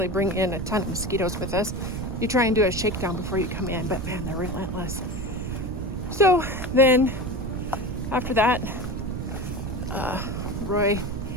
bring in a ton of mosquitoes with us. You try and do a shakedown before you come in, but man, they're relentless. So then after that, Roy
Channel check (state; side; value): noise; right; rumble, 5 dB below the sound